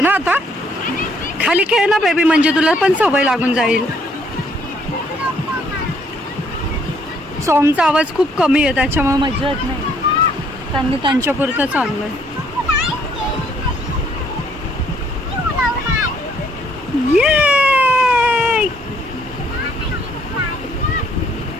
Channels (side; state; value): both; normal; correlation 0.66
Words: ना आता. खाली खेळ ना बेबी म्हणजे तुला पण सवय लागून जाईल. सॉंगचा आवाज खूप कमी आहे त्याच्यामुळे मजा येत नाही. त्यांनी त्यांच्या पुरतं चालू आहे. ये